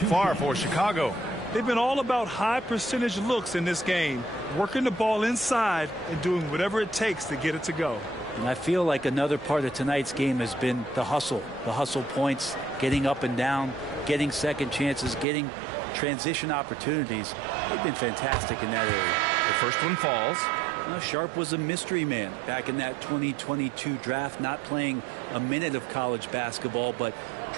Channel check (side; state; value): left; drops out; at 15.2 s